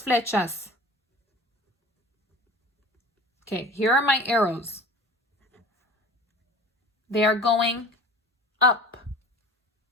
flechas. Okay, here are my arrows. They are going up,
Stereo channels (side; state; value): both; normal; correlation 0.41